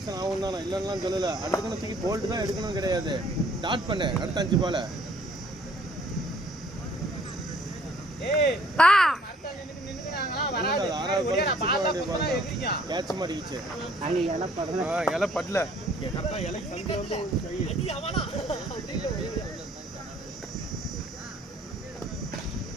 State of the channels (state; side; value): normal; both; correlation 0.59